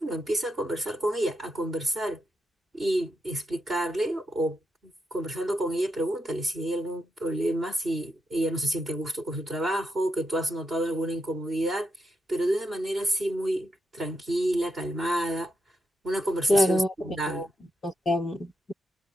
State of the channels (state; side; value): normal; both; correlation 0.83